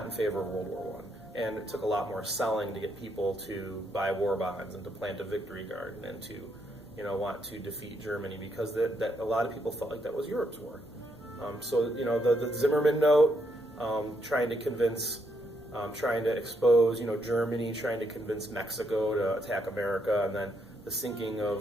in favor of World War I. And it took a lot more selling to get people to buy war bonds and to plant a victory garden and to, want to defeat Germany, because that a lot of people felt like that was Europe's war. The Zimmerman note, trying to expose, Germany, trying to convince Mexico to attack America, and then the sinking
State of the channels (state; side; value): normal; both; correlation 0.76